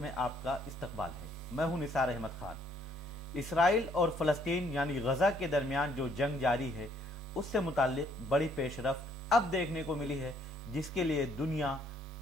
में आपका इस्तकबाल है। मैं हूं निसार अहमद खान। इसराइल और फ़लस्तीन यानी गजा के दरमियान जो जंग जारी है उससे मुताल्लिक बड़ी पेशरफ्त अब देखने को मिली है, जिसके लिए दुनिया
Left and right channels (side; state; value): both; normal; correlation 0.65